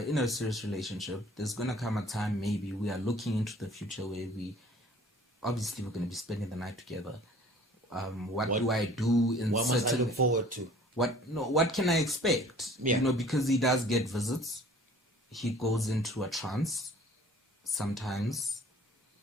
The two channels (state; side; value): normal; both; correlation 0.50